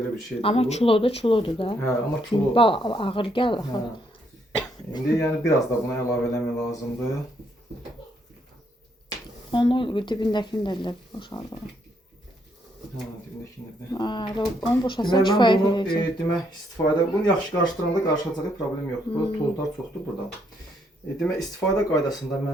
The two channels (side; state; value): both; normal; correlation 0.73